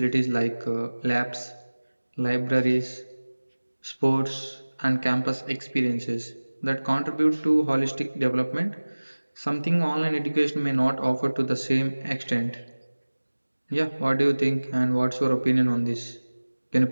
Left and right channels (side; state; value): both; inverted; correlation -1.00